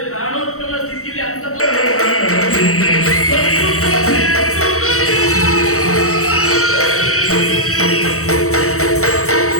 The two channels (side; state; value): right; late; 0.64 ms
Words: ಪ್ರಾಣೋತ್ಪನ್ನ ಸ್ಥಿತಿಯಲ್ಲಿ ಅಂತ